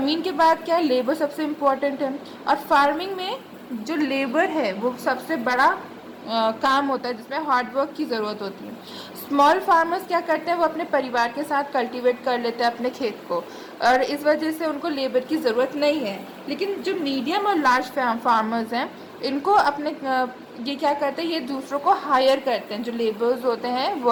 के बाद क्या, labour सबसे important है, और farming में जो labour है वो सबसे बड़ा काम होता है जिसमें हार्ड वर्क की ज़रूरत होती है। स्मॉल फार्मर्स क्या करते हैं, वो अपने परिवार के साथ कल्टीवेट कर लेते हैं अपने खेत को, और इस वजह से उनको लेबर की ज़रूरत नहीं है। लेकिन जो मीडियम और लार्ज फार्मर्स हैं, इनको अपने ये क्या करते हैं, ये दूसरों को हायर करते हैं, जो लेबर्स होते हैं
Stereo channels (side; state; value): both; identical; correlation 1.00